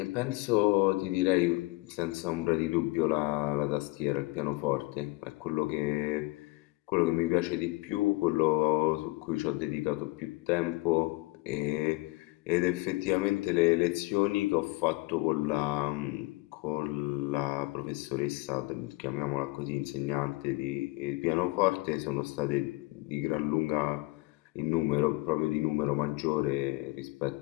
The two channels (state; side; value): quieter; right; 23.0 dB